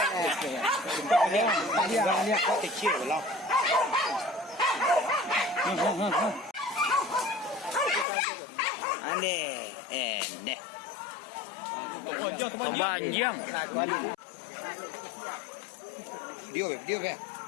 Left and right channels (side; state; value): right; drops out; at 8.1 s